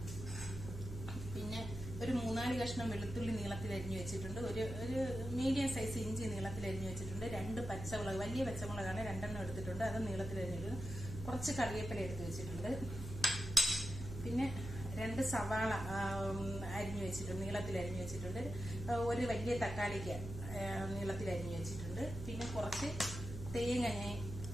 പിന്നെ ഒരു 3-4 കഷ്ണം വെളുത്തുള്ളി നീളത്തിൽ അരിഞ്ഞു വെച്ചിട്ടുണ്ട്. ഒരു മീഡിയം സൈസ് ഇഞ്ചി നീളത്തിൽ അരിഞ്ഞു വെച്ചിട്ടുണ്ട്. 2 പച്ചമുളക്, വലിയ പച്ചമുളകാണ് 2 എടുത്തിട്ടുണ്ട്, അത് നീളത്തിൽ അരിഞ്ഞിട്ടുണ്ട്. കുറച്ച് കറിവേപ്പില എടുത്ത് വെച്ചിട്ടുണ്ട്. പിന്നെ 2 സവാള അരിഞ്ഞു വെച്ചിട്ടുണ്ട്, നീളത്തിൽ അരിഞ്ഞു വെച്ചിട്ടുണ്ട്. ഒരു വലിയ തക്കാളിക്ക് നീളത്തിൽ അരിഞ്ഞു വെച്ചിട്ടുണ്ട്. പിന്നെ കുറച്ച് തേങ്ങ ഞാൻ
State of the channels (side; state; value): right; noise; hum, 8 dB below the sound